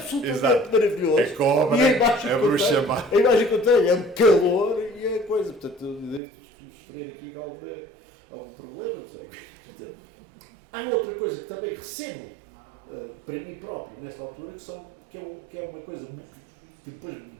maravilhoso? A cobra, a bruxa má. A imagem que eu tenho é um calor e a coisa. Portanto, eu devo sofrer aqui algum problema, não sei. Há outra coisa que também recebo para mim próprio nesta altura, que é uma coisa que depois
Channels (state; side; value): drops out; left; at 6.2 s